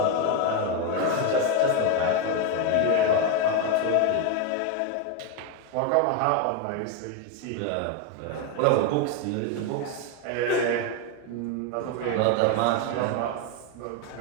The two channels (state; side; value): different; both; correlation 0.01